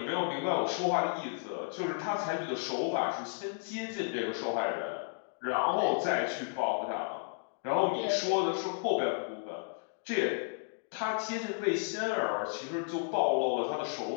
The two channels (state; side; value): silent; right; digital silence